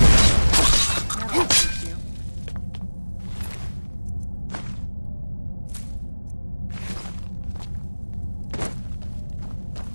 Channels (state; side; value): inverted; both; correlation -1.00